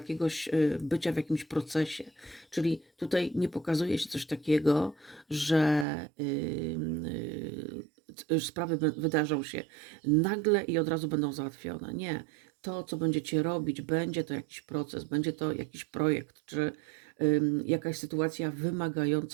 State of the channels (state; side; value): drops out; left; at 5.9 s